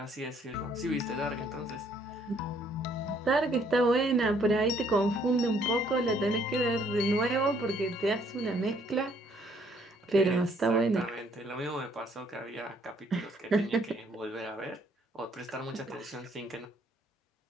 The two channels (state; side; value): normal; both; correlation 0.65